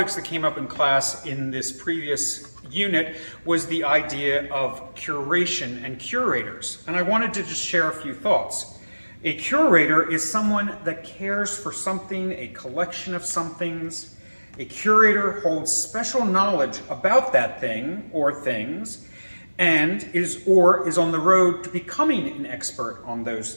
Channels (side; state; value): both; inverted; correlation -1.00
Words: that came up in class in this previous unit was the idea of curation and curators, and I wanted to just share a few thoughts. A curator is someone that cares for something, a collection of somethings. A curator holds special knowledge about that thing or things and is on the road to becoming an expert on those